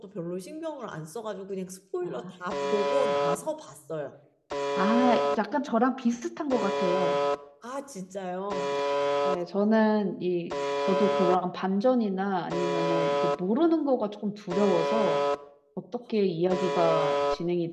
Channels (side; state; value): both; identical; correlation 1.00